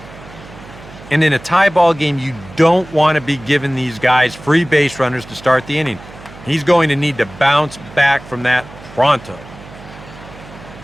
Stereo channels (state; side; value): noise; right; hum, 18 dB below the sound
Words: And in a tie ball game, you don't want to be giving these guys free base runners to start the inning. He's going to need to bounce back from that pronto.